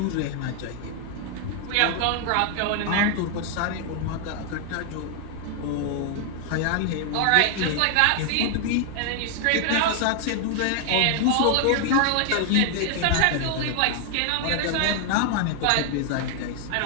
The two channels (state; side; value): different; both; correlation 0.00